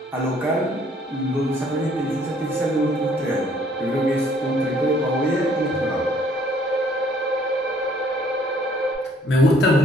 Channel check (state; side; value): normal; both; correlation 0.61